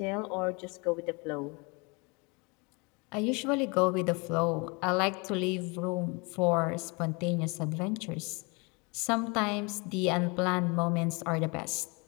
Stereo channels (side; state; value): right; quieter; 29.6 dB